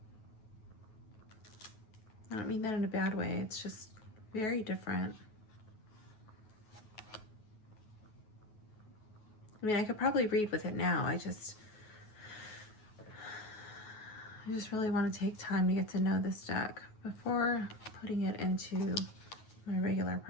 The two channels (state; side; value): late; right; 9.4 ms